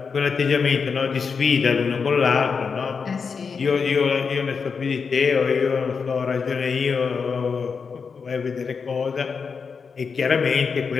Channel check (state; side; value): quieter; right; 5.5 dB